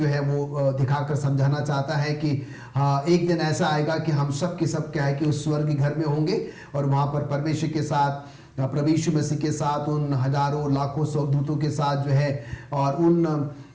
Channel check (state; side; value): identical; both; correlation 1.00